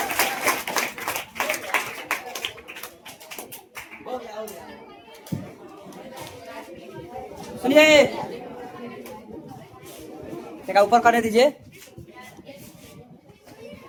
सुनिए, देखा ऊपर करने दीजिए,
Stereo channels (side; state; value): both; identical; correlation 1.00